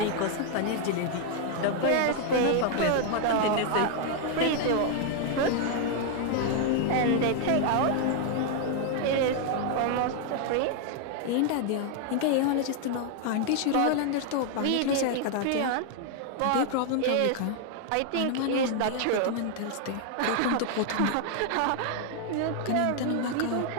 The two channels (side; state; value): both; different; correlation 0.00